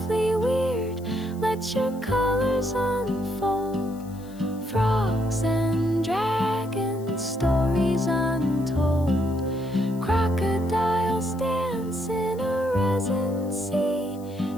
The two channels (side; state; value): left; noise; hiss, 24 dB below the sound